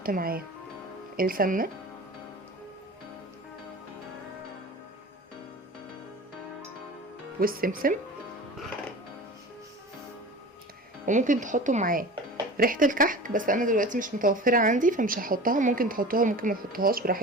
معاه السمنه، والسمسم، وممكن تحطوا معاه ريحه الكحك، بس انا دلوقتي مش متوفره عندي فمش هحطها. ممكن تحطوها ممكن ما تحطوهاش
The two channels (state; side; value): normal; both; correlation 0.36